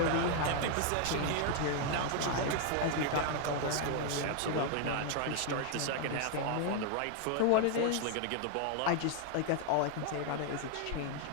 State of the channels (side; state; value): both; different; correlation 0.00